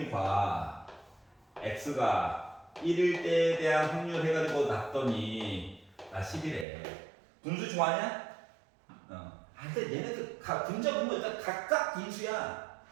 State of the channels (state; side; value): drops out; left; at 6.7 s